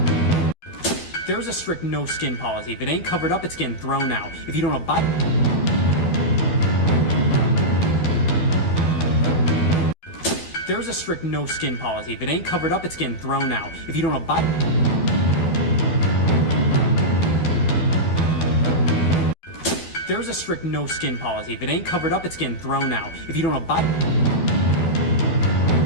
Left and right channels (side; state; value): right; late; 12 ms